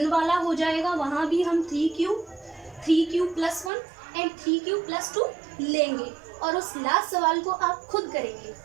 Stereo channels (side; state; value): left; drops out; at 3.7 s